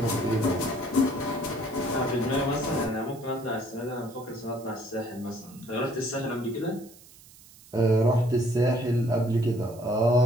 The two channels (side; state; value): right; noise; hiss, 23 dB below the sound